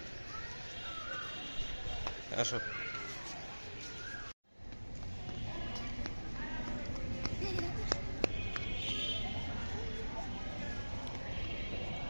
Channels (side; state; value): both; inverted; correlation -1.00